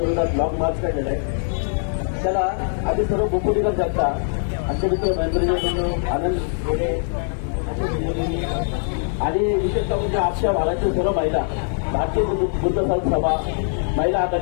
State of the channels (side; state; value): right; silent; 64 dB below the other